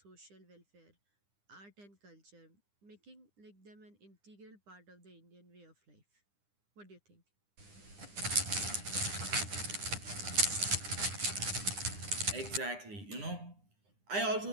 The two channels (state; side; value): late; left; 9.9 ms